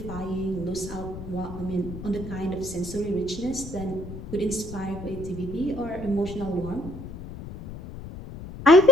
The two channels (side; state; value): left; noise; rumble, 11 dB below the sound